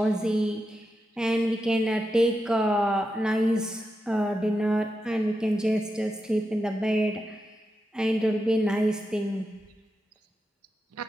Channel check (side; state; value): both; normal; correlation 0.88